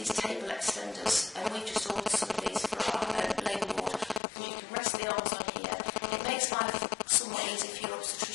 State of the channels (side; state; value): right; drops out; at 4.2 s